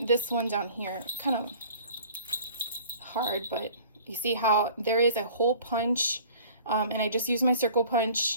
this one down here, kind of hard, but you see how there is a hole punch And I just used my circle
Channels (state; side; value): inverted; both; correlation -0.49